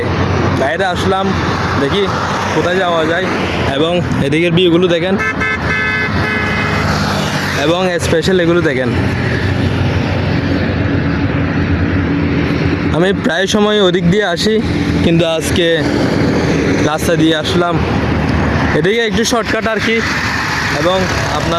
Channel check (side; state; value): both; identical; correlation 1.00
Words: বাইরে আসলাম, দেখি কোথায় যাওয়া যায়। এবং এদিকের ভিউগুলো দেখেন, এবং স্পেশাল এগুলো দেখেন। আমি প্রায় সময় ওদিক দিয়ে আসি, কিন্তু আজকে রাস্তা দিয়ে আসলাম। এদিকে একটু শর্টকাট আর কি, এবং